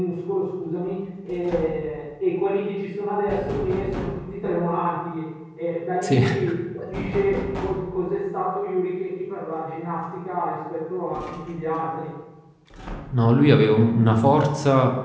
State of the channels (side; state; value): both; identical; correlation 1.00